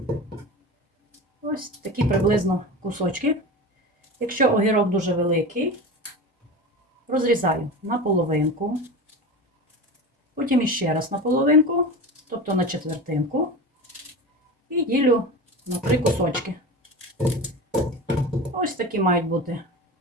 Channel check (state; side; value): normal; both; correlation 0.29